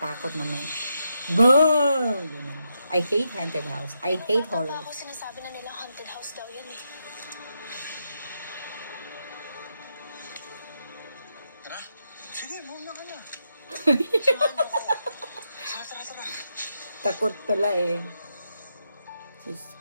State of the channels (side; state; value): both; inverted; correlation -0.82